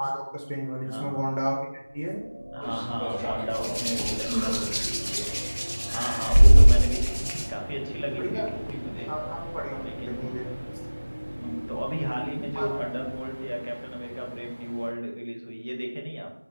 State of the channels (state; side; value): inverted; both; correlation -1.00